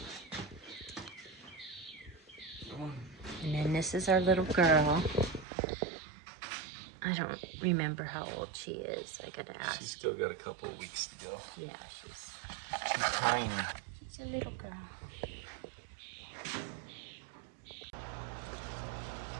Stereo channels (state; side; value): drops out; left; at 5.5 s